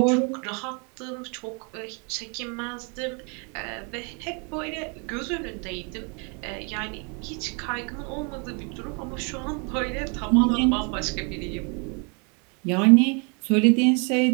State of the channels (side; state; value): left; quieter; 35.0 dB